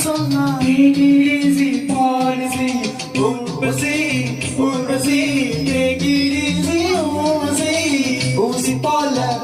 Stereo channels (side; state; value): both; identical; correlation 1.00